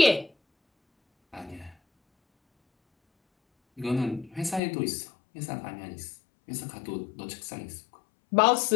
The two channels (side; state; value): right; drops out; at 4.6 s